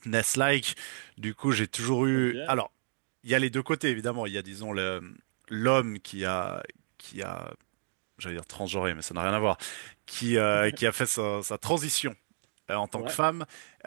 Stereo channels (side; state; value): left; silent; digital silence